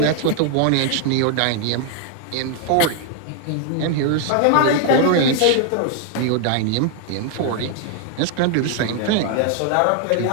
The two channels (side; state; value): both; different; correlation 0.00